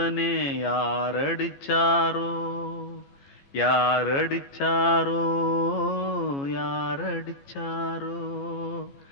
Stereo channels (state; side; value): late; right; 14 ms